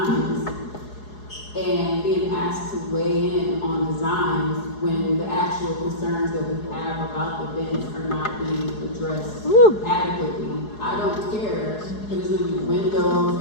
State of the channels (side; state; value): right; late; 4.8 ms